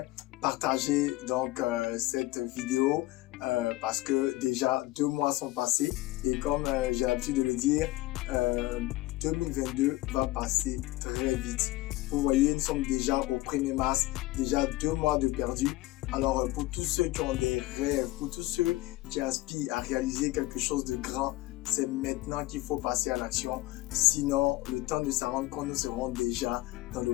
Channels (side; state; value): right; quieter; 18.3 dB